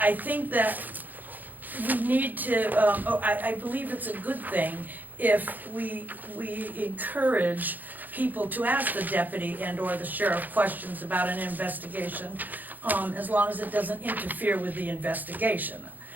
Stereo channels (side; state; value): left; late; 0.084 ms